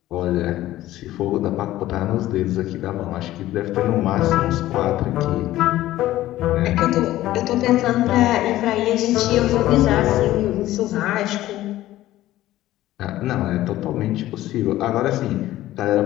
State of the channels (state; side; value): quieter; right; 15.0 dB